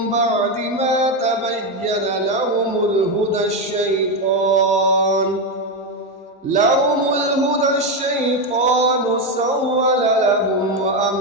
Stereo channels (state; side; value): normal; both; correlation 0.09